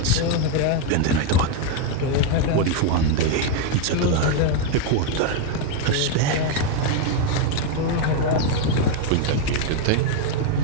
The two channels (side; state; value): both; different; correlation 0.01